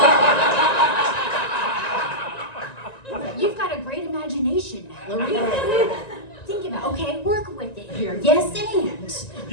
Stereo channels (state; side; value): late; right; 1.9 ms